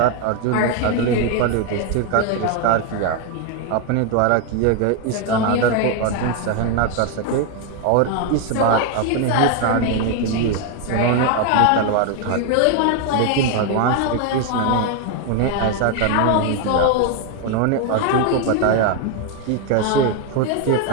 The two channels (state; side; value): different; both; correlation 0.01